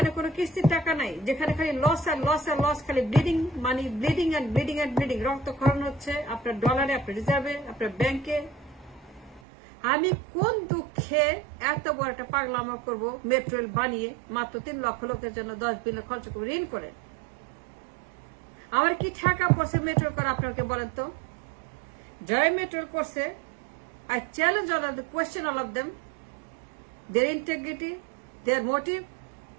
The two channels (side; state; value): left; drops out; at 9.4 s